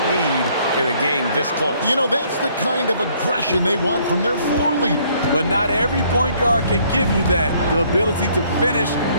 need in a game this close. You know, that's the kind of aggression they want from their floor leader. But not every point guard can give you that. The ability to finish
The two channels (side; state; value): both; inverted; correlation -0.64